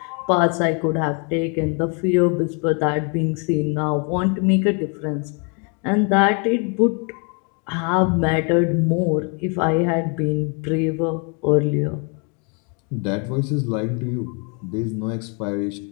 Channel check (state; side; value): quieter; right; 36.2 dB